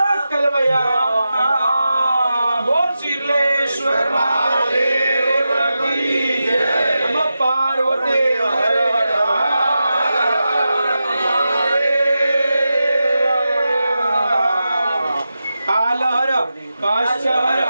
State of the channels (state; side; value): inverted; both; correlation -0.91